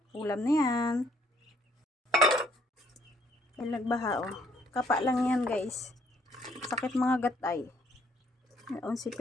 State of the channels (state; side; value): normal; both; correlation 0.66